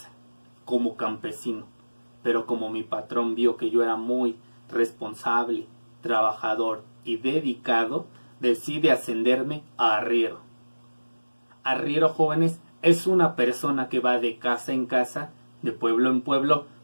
como campesino. Pero como mi patrón vio que yo era muy responsable, trabajador y dedicado, decide ascenderme a arriero. Arriero, jóvenes, es una persona que va de casa en casa, de pueblo en pueblo,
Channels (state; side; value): inverted; both; correlation -1.00